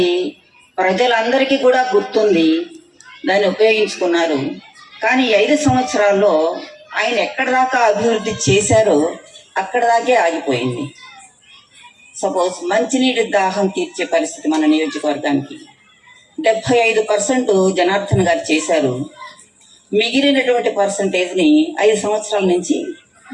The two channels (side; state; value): both; identical; correlation 1.00